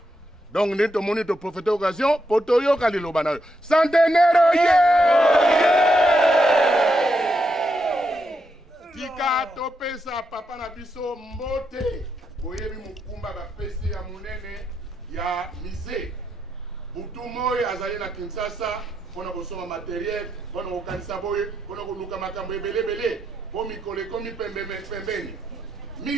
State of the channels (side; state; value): both; normal; correlation 0.82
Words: Donc nde tomoni to profiter occasion po toyoka liloba na yo centenaire oye! Tika topesa papa na biso mbote boyebi mukumba bapesi ya munene ya mise butu moyo azali na Kinshasa mpona kosoma materiel mpona kokanisa boye mpona koluka makambo ebelebele po mikolo ekomi pembeni